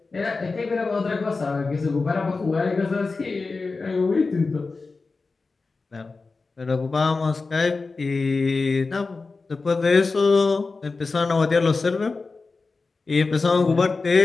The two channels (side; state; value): right; quieter; 4.0 dB